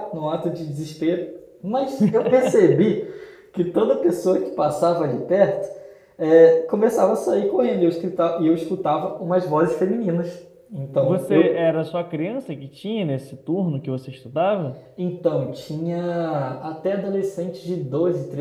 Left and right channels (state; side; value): identical; both; correlation 1.00